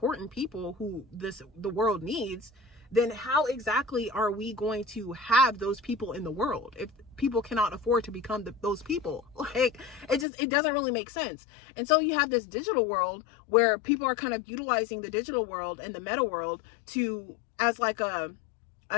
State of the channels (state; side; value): drops out; right; at 10.2 s